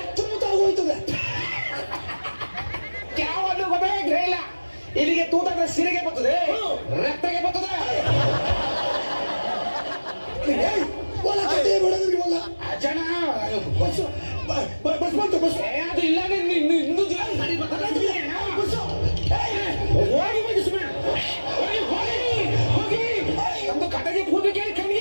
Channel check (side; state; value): both; inverted; correlation -1.00